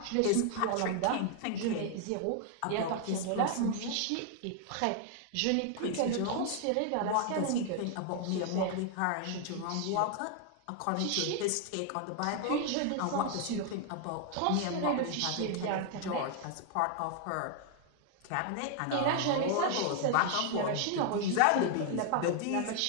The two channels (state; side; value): different; both; correlation 0.00